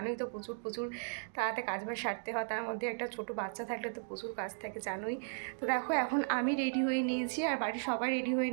তো প্রচুর প্রচুর তাড়াতে কাজবাজ সারতে হয়, তার মধ্যে একটা ছোটো বাচ্চা থাকলে তো প্রচুর কাজ থাকে জানোই। তো দেখো এখন আমি রেডি হয়ে নিয়েছি আর বাড়ির সবাই রেডি হয়ে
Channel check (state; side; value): silent; left; digital silence